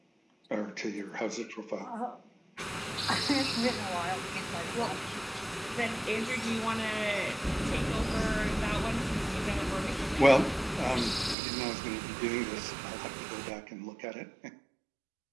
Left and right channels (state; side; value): drops out; left; at 11.4 s